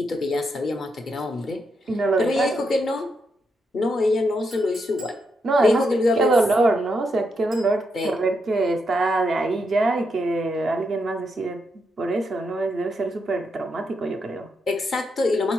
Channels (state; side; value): normal; both; correlation 0.81